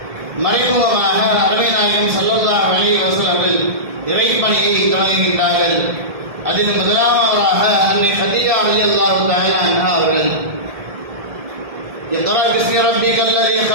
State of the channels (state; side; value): late; left; 1.7 ms